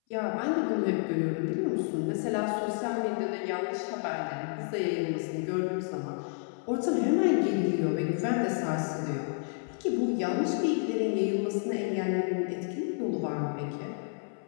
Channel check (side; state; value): right; silent; 58 dB below the other